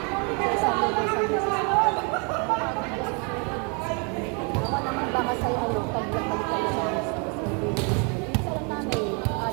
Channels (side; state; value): left; quieter; 34.3 dB